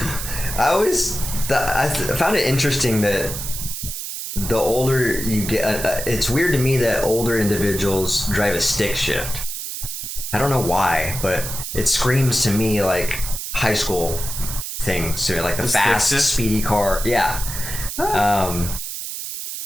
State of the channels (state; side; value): noise; right; hiss, 6 dB below the sound